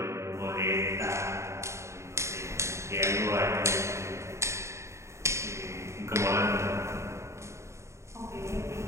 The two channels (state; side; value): late; left; 0.14 ms